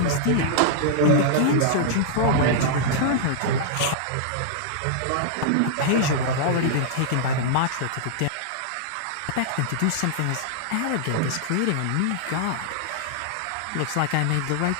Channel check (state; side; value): different; both; correlation -0.01